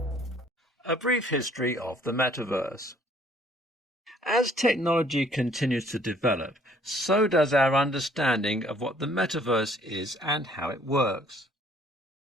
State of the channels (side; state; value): both; normal; correlation 0.60